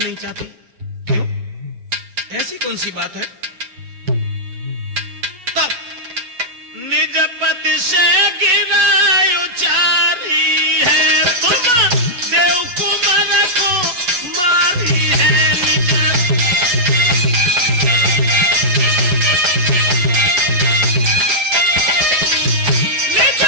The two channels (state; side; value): late; left; 8.3 ms